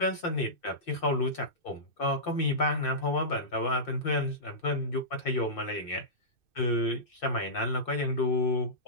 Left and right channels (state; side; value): late; right; 2.6 ms